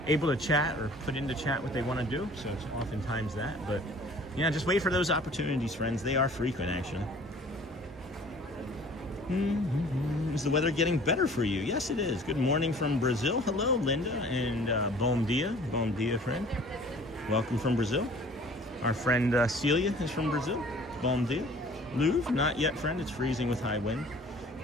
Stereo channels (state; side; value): normal; both; correlation 0.50